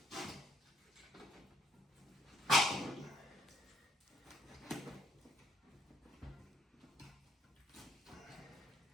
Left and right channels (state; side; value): normal; both; correlation 0.67